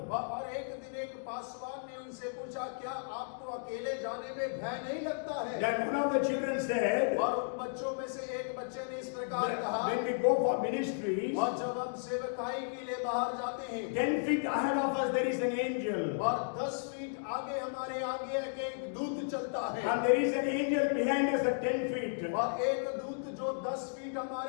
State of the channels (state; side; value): silent; right; digital silence